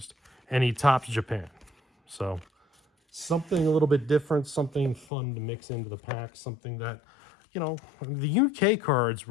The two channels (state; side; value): drops out; right; at 5.1 s